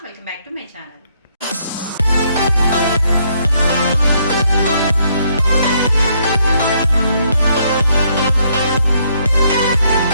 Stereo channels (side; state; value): both; inverted; correlation -0.71